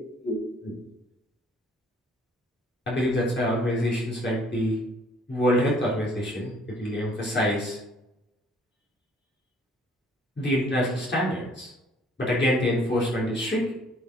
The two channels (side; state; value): both; normal; correlation 0.59